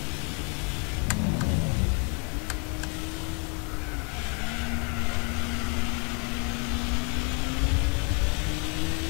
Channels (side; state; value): right; quieter; 34.4 dB